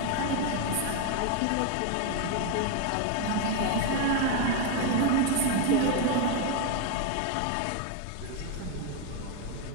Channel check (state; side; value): different; both; correlation 0.02